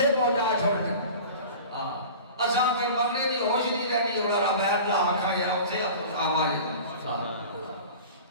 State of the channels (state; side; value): inverted; both; correlation -0.38